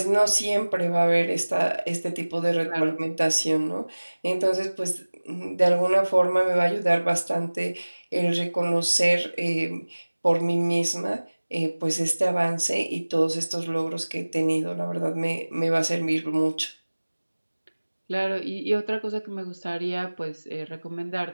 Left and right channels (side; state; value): both; inverted; correlation -1.00